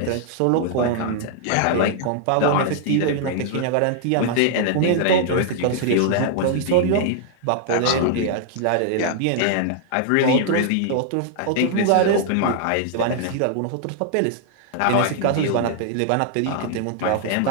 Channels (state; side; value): different; both; correlation -0.01